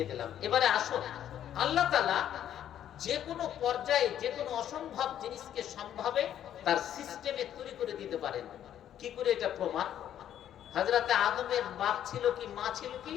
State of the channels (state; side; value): quieter; right; 10.6 dB